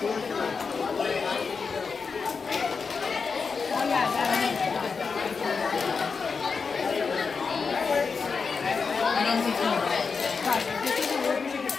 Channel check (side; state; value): right; quieter; 5.2 dB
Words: don't think so.